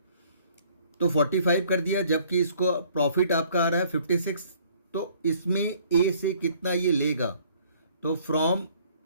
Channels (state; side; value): inverted; both; correlation -0.58